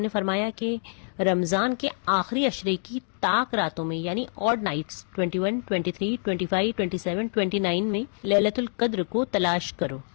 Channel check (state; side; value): silent; right; digital silence